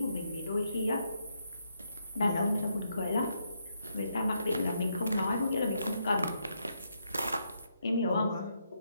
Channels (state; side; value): inverted; both; correlation -0.79